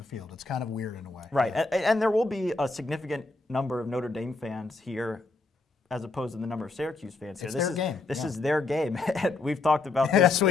field. It's kind of weird in a way. Right, and there will be a significant number of Notre Dame fans here as opposed to the number of Syracuse fans here. This is their game. We've talked about this. Yes,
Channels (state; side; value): quieter; right; 3.5 dB